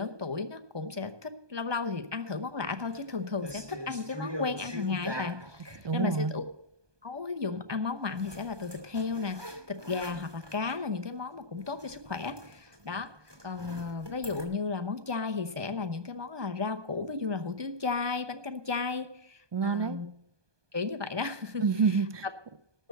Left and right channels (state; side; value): late; left; 1.2 ms